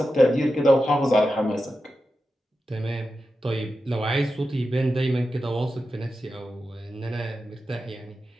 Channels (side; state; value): both; normal; correlation 0.91